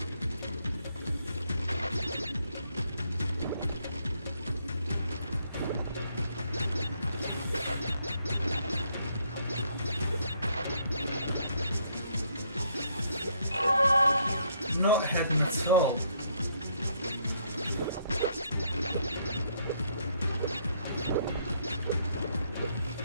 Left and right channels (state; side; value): inverted; both; correlation -0.70